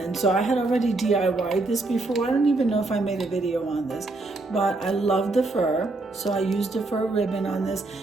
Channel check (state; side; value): quieter; left; 3.2 dB